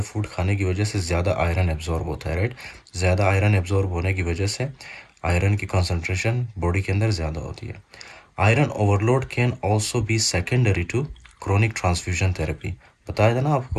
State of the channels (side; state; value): both; identical; correlation 1.00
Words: फूड खाने की वजह से ज़्यादा आयरन एब्जॉर्ब होता है, राइट। ज़्यादा आयरन एब्जॉर्ब होने की वजह से आयरन की कंसंट्रेशन बॉडी के अंदर ज़्यादा होती है। Iron overload can also be secondary to chronic transfusion therapy. बताया था ना